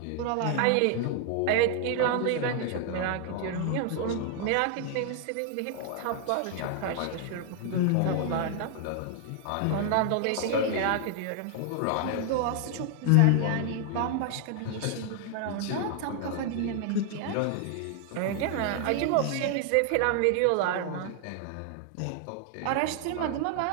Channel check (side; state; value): both; different; correlation 0.00